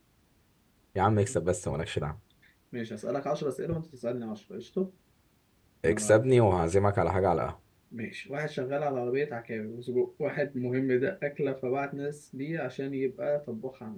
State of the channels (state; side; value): identical; both; correlation 1.00